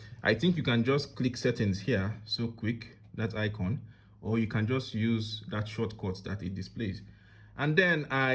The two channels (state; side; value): identical; both; correlation 1.00